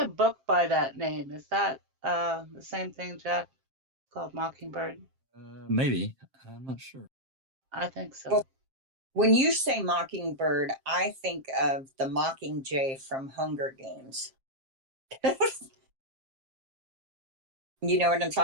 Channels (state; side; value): late; left; 7.5 ms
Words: book by that name. Is that the same thing, Jack? Called Mockingbird? Maybe. I'm not sure. I think so. Well, when you say Mockingbird, I think of the Mockingjay from Hunger Games. You know what I'm